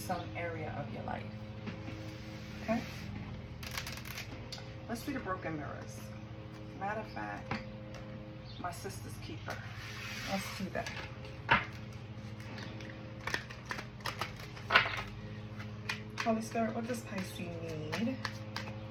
area of your life. Okay? Let's see the broken mirrors. Matter of fact, my sister's keeper. Let's see that. Holy Spirit, what does Pisces need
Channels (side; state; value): both; identical; correlation 1.00